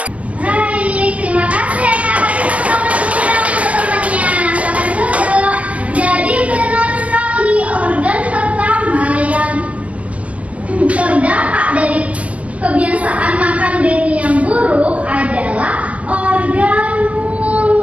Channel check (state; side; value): late; left; 0.069 ms